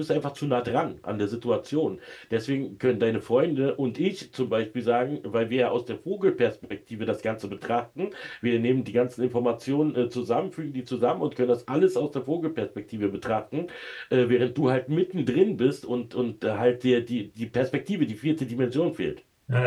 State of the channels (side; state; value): both; identical; correlation 1.00